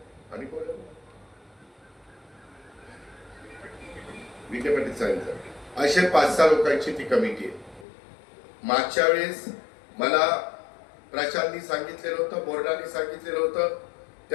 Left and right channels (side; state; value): right; drops out; at 7.9 s